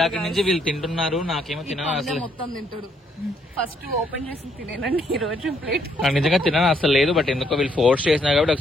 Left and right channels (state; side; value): normal; both; correlation 0.71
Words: నుంచి వీళ్ళు తింటున్నారు, నాకేమో తినడం అసలు. మొత్తం తింటాడు. ఫస్ట్ ఓపెన్ చేసి తినేనండి ఈ రోజు ప్లేట్. నాకు నిజంగా తినడం అసలు లేదు. బట్ ఎందుకో వీళ్ళు ఫోర్స్ చేసినా కాబట్టి ఒక